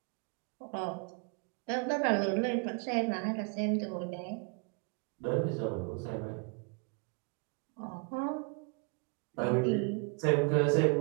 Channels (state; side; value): quieter; left; 36.3 dB